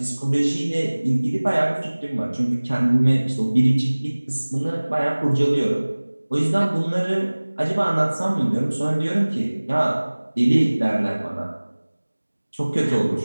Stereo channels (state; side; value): inverted; both; correlation -1.00